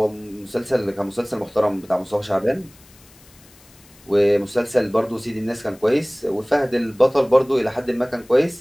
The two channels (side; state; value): left; noise; hiss, 26 dB below the sound